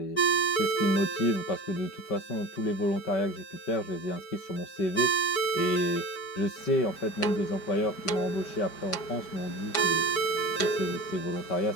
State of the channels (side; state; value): right; late; 5.1 ms